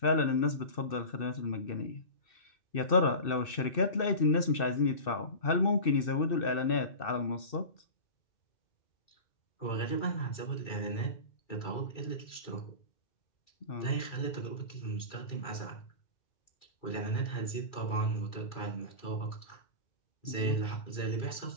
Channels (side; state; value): right; late; 2.6 ms